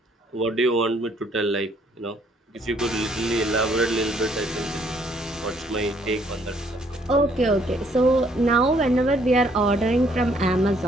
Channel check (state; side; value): normal; both; correlation 0.65